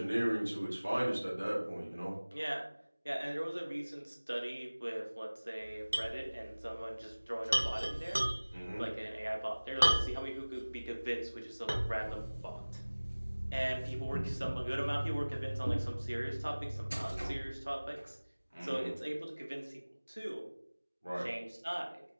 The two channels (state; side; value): inverted; both; correlation -1.00